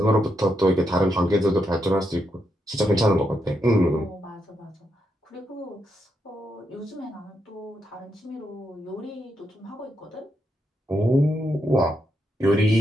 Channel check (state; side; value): normal; both; correlation 0.81